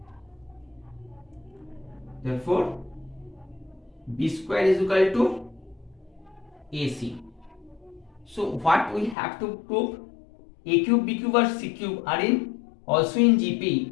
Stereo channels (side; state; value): right; drops out; at 9.2 s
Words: therefore B square is equal to AC. So what we have to prove? A cube, B cube or C cube are in also in